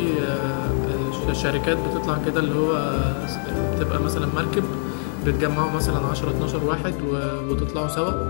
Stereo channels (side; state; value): right; silent; 63 dB below the other